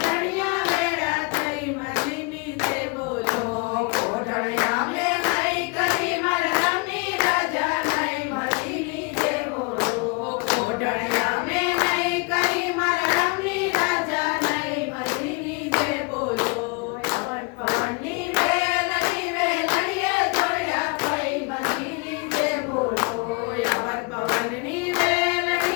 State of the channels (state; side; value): quieter; right; 30.1 dB